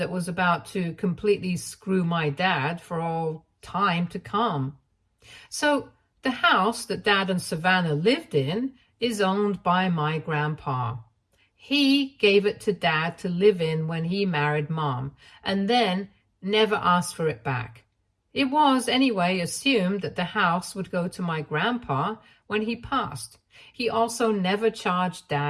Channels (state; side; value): identical; both; correlation 1.00